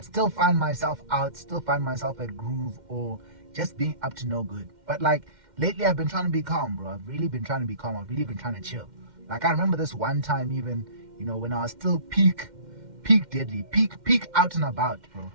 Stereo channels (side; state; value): left; late; 2.1 ms